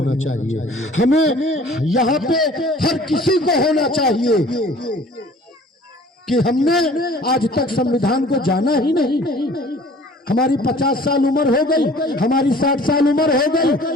चाहिए। हमें यहाँ पे हर किसी को होना चाहिए कि हमने आज तक संविधान को जाना ही नहीं। हमारी 50 साल उम्र हो गई, हमारी 60 साल उम्र हो गई,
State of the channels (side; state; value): both; normal; correlation 0.49